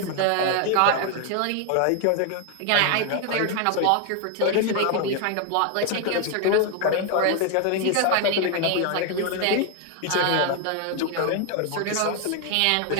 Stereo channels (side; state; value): both; different; correlation 0.01